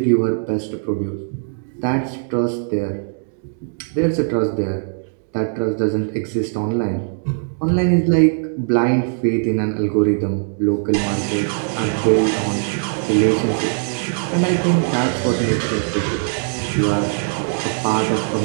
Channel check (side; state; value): left; silent; digital silence